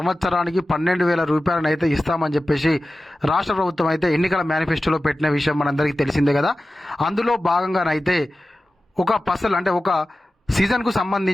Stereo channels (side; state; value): both; normal; correlation 0.95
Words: 12,000 రూపాయలనైతే ఇస్తామని చెప్పేసి రాష్ట్ర ప్రభుత్వం అయితే ఎన్నికల మేనిఫెస్టోలో పెట్టిన విషయం మనందరికీ తెలిసిందే కదా. అందులో భాగంగానైతే ఒక పసల్ అంటే ఒక సీజన్కు